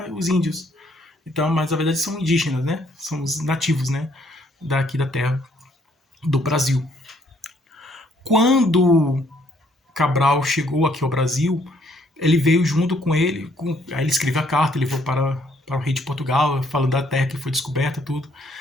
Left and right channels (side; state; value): both; normal; correlation 0.67